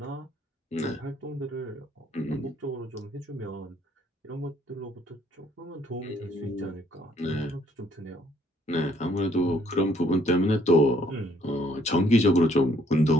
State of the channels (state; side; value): normal; both; correlation 0.64